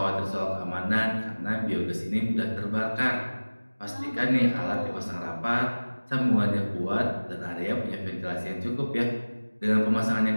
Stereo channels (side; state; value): both; inverted; correlation -1.00